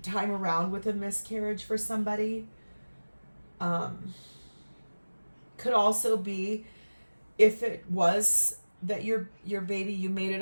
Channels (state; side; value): inverted; both; correlation -1.00